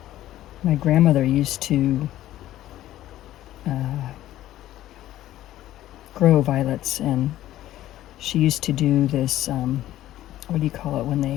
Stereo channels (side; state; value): right; quieter; 13.9 dB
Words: My grandmother used to grow violets, and she used to do this, what do you call it,